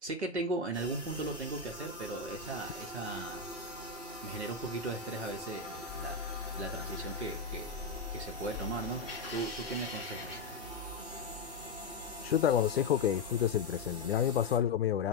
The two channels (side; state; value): right; quieter; 4.3 dB